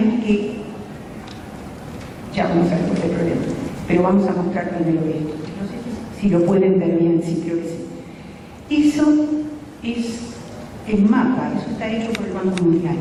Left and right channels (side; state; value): both; identical; correlation 1.00